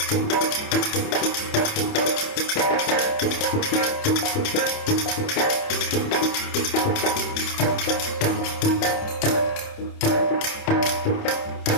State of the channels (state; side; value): late; right; 28 ms